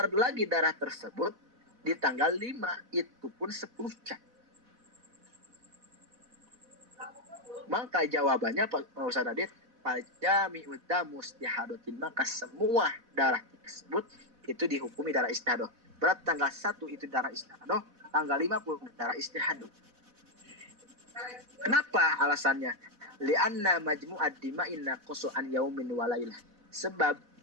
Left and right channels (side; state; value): left; late; 4.1 ms